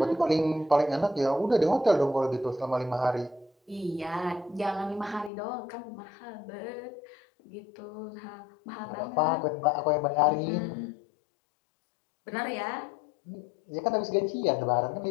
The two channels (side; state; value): right; drops out; at 5.3 s